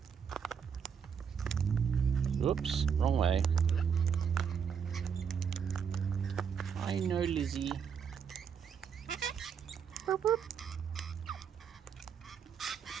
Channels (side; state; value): left; quieter; 7.1 dB